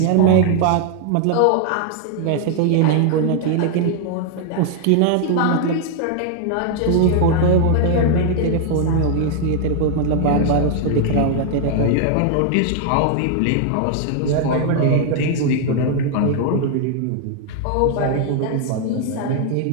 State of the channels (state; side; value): different; both; correlation 0.00